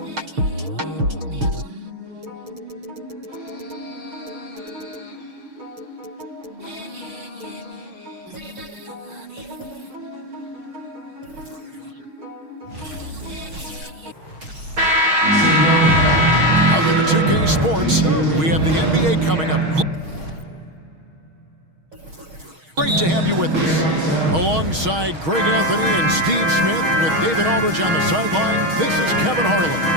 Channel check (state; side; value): late; left; 6.3 ms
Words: Welcome to 2K Sports. We have the NBA coming up. Great to have you with us. Alongside Greg Anthony and Steve Smith with David Aldridge on the sideline, this is Kevin Harlan.